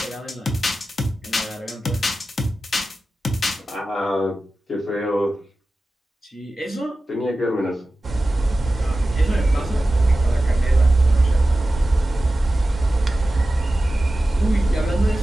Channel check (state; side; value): normal; both; correlation 0.94